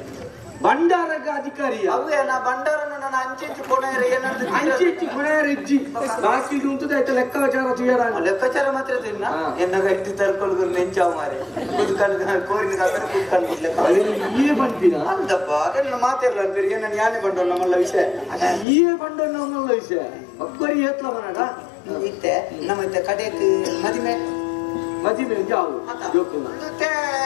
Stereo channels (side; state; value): right; drops out; at 18.7 s